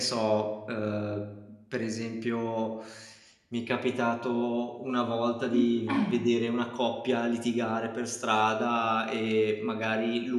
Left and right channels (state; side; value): identical; both; correlation 1.00